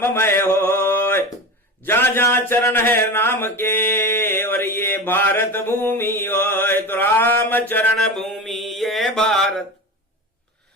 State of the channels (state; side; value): normal; both; correlation 0.27